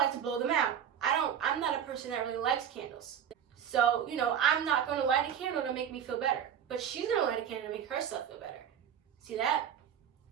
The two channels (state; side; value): quieter; left; 8.7 dB